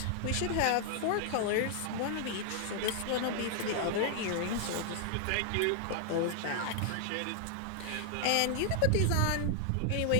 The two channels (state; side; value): different; both; correlation 0.00